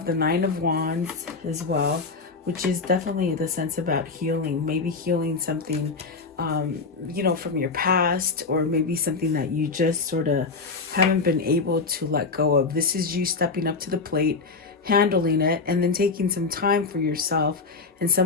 the Nine of Wands as well, which is definitely the sense about healing. Maybe healing something, you know, from your past, or maybe something that you just sort of haven't been able to let go of. This is you stepping up to the plate, handling it, and then taking some time for yourself and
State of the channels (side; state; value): right; quieter; 4.3 dB